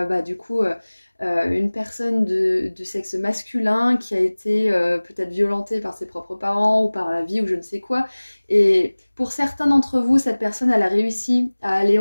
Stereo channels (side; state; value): both; inverted; correlation -1.00